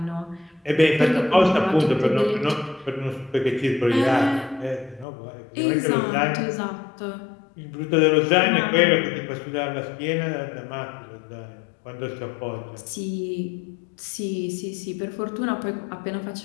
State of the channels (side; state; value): right; drops out; at 5.1 s